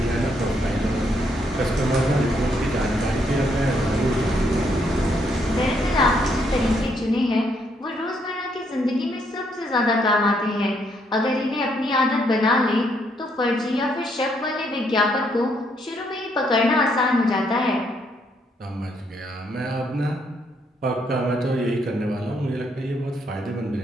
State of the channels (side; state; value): both; normal; correlation 0.73